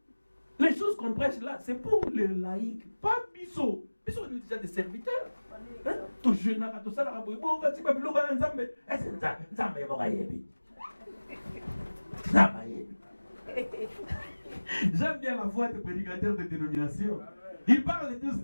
Les choses qu'on prêche là, c'est pour les laïcs, pas Bissot. Bissot est déjà des serviteurs. Tout jeune, tout ça, j'aime bien la voix des prédicateurs de dénomination. Ils parlent tous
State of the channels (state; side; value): inverted; both; correlation -1.00